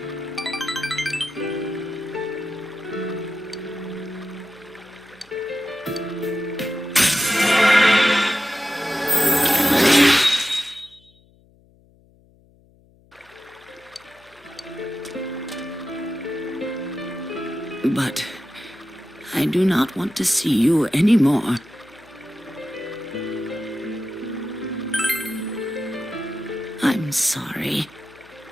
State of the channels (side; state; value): left; noise; hum, 30 dB below the sound